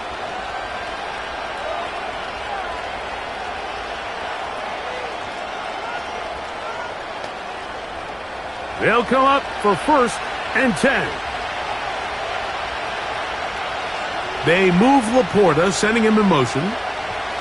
They'll come up for 1st and 10. They move Laporta, sending him in motion.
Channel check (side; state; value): both; identical; correlation 1.00